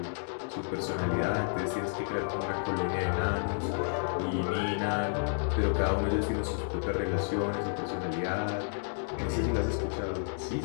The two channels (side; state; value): right; silent; digital silence